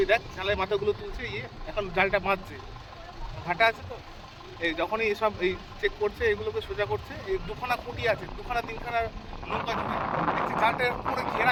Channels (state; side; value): identical; both; correlation 1.00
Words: দেখ জালের মাথাগুলো তুলছে, এখন জালটা বাঁধছে, ভাটা আছে তো, এই যখনই এসব এই চেক করছে, এগুলোকে সোজা করছে। এই 2খানা খুঁটি আছে, 2খানা 3খানা নৌকা জুড়ে দেখছি জালটা পুরো